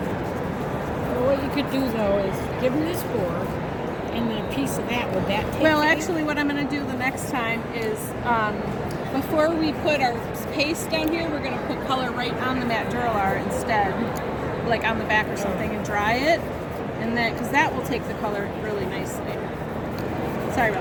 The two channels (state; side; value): identical; both; correlation 1.00